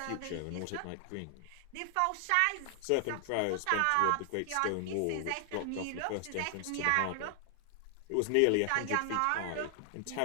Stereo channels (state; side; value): different; both; correlation 0.00